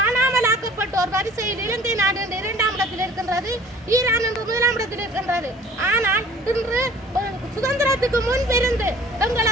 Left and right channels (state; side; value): normal; both; correlation 0.49